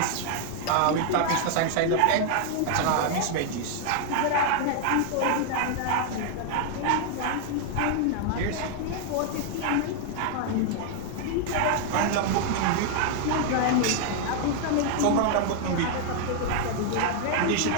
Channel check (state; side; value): different; both; correlation 0.00